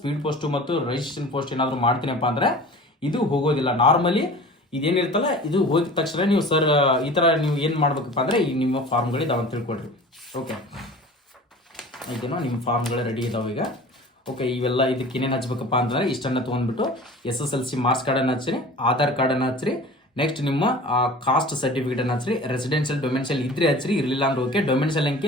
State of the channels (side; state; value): both; normal; correlation 0.40